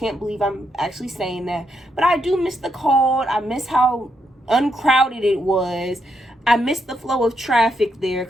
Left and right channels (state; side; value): normal; both; correlation 0.79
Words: believe I'm actually saying that. But I do miss the cold. I miss how uncrowded it was. I miss the flow of traffic there,